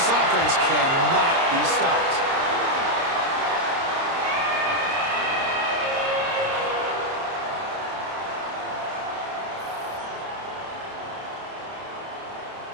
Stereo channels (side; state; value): left; late; 30 ms